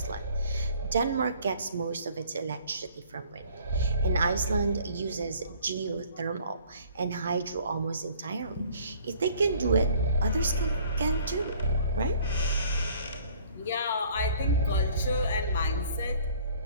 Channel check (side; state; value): both; inverted; correlation -0.55